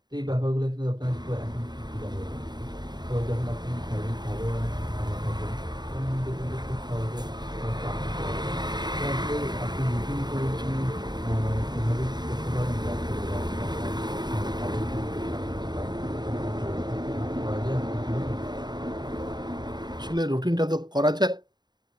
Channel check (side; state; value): left; late; 0.21 ms